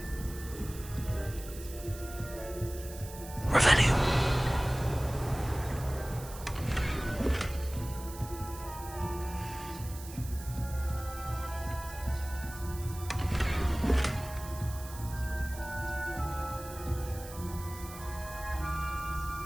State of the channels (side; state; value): right; noise; hiss, 15 dB below the sound